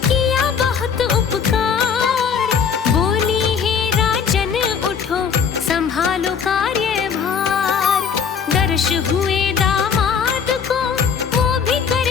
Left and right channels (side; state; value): right; quieter; 6.7 dB